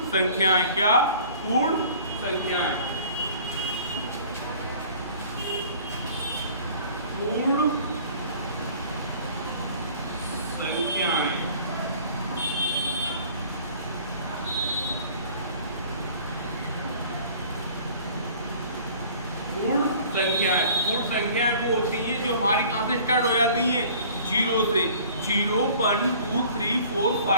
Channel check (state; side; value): inverted; both; correlation -0.50